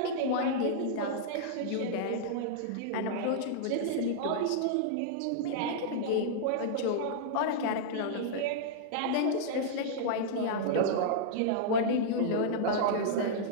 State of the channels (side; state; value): both; different; correlation -0.02